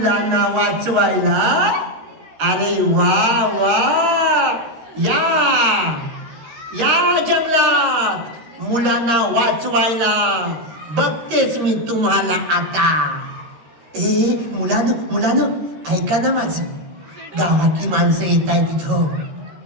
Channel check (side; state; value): left; late; 13 ms